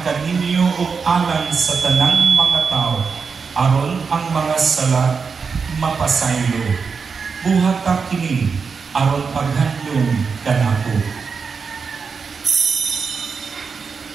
kaninyo ug alang sa tanang mga tao aron ang mga sala mapasaylo. Buhat ka kini aron paghandom kanako.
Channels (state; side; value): quieter; left; 5.4 dB